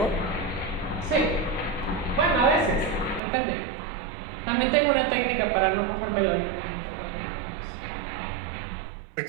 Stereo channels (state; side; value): drops out; left; at 3.2 s